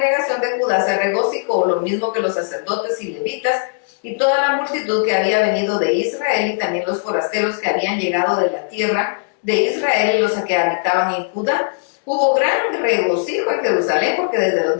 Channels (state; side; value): silent; right; digital silence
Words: de Judá se regocijó, lo mismo que los sacerdotes y levitas, y toda la multitud que había venido de Israel, y también los forasteros que habían llegado de la tierra de Israel y los que habitaban en Judá. Hubo gran regocijo en Jerusalén, porque desde los